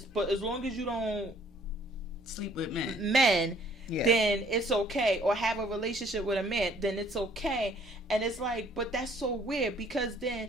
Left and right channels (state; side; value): normal; both; correlation 0.60